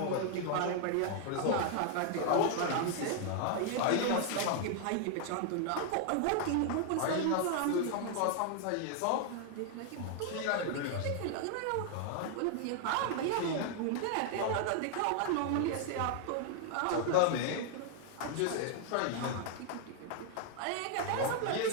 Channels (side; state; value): both; different; correlation 0.00